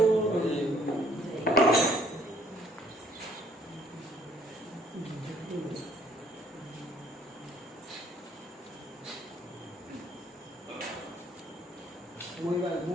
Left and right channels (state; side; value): normal; both; correlation 0.62